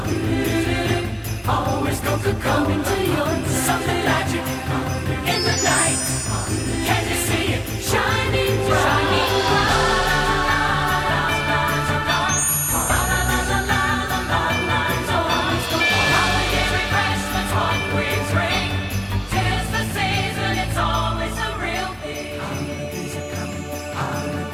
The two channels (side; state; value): both; identical; correlation 1.00